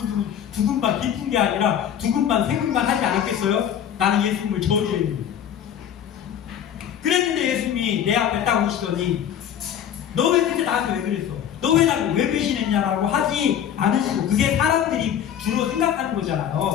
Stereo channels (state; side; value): quieter; right; 9.5 dB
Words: 두근반 깊은 게 아니라 두근반 세근반 하지 않았겠어요? 나는 예수님을 저주했는데. 그랬는데 예수님이 내 앞에 딱 오시더니 너 왜 그때 나한테 왜 그랬어? 너 왜 나를 왜 배신했냐라고 하지 않으시고 그게 사람들이 주로 생각하는